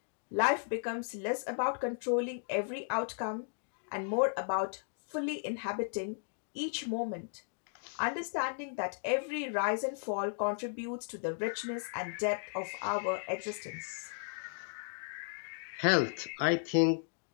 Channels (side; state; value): right; silent; digital silence